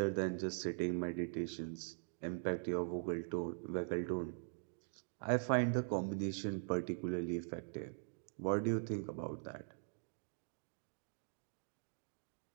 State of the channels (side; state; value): left; silent; digital silence